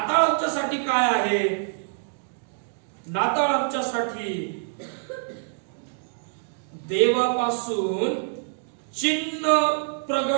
आमच्यासाठी काय आहे? नाताळ आमच्यासाठी देवापासून चिन्ह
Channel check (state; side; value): silent; left; digital silence